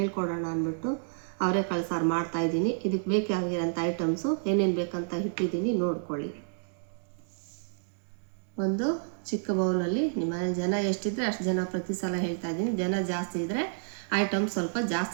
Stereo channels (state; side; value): silent; left; digital silence